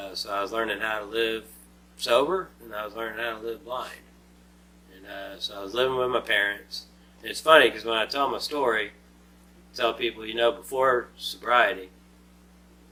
so I was learning how to live sober, and I was learning how to live blind. And so I was living with my parents. And it's funny because when I tell my story, I tell people, you know, before sobriety,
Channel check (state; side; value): identical; both; correlation 1.00